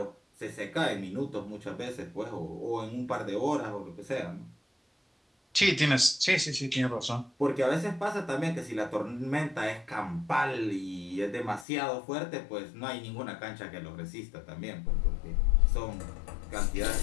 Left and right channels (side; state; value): right; drops out; at 11.7 s